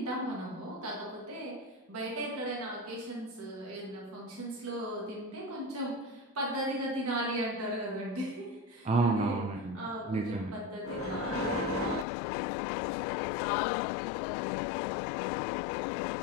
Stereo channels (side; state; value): right; drops out; at 12.1 s